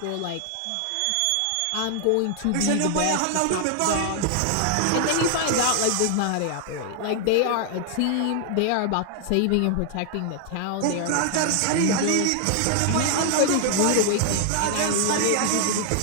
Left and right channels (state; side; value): different; both; correlation 0.00